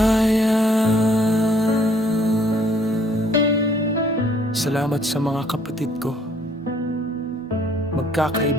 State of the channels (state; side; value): normal; both; correlation 0.62